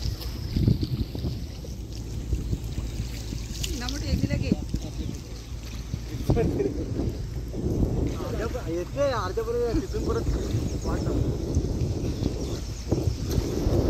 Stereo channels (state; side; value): identical; both; correlation 1.00